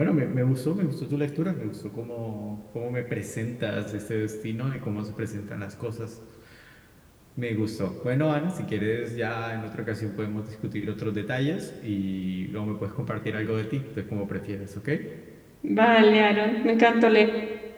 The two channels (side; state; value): both; identical; correlation 1.00